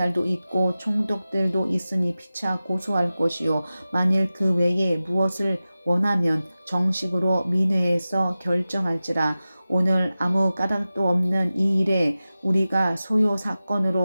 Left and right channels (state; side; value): inverted; both; correlation -0.95